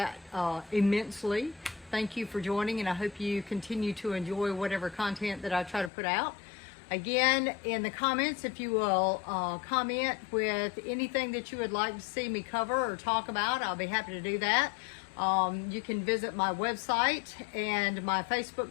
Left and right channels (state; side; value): drops out; right; at 5.9 s